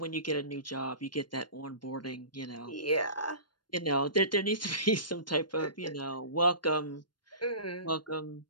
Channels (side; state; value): right; late; 0.71 ms